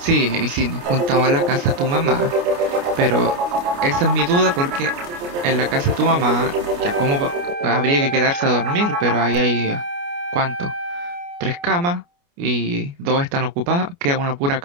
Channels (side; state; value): left; late; 29 ms